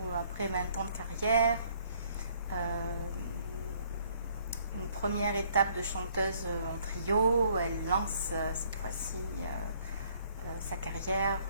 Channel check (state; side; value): inverted; both; correlation -0.63